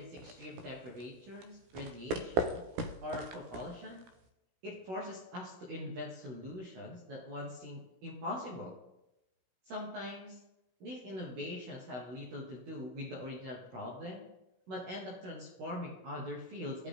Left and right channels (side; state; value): left; late; 16 ms